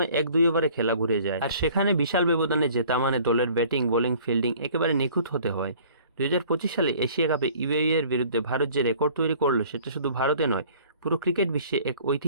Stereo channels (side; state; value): both; inverted; correlation -0.52